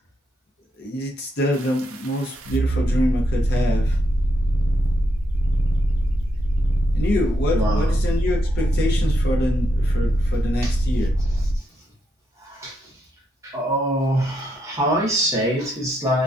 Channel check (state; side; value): normal; both; correlation 0.80